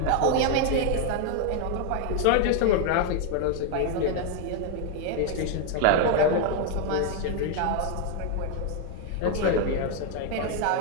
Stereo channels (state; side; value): different; both; correlation 0.01